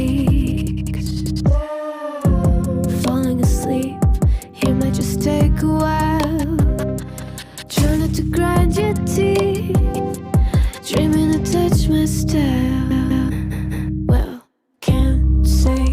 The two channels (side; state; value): both; identical; correlation 1.00